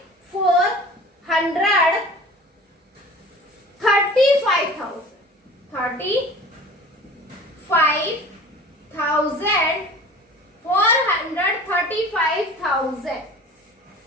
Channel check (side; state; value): both; normal; correlation 0.42